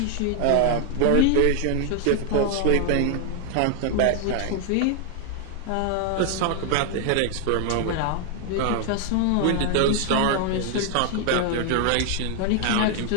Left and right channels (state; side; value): different; both; correlation 0.00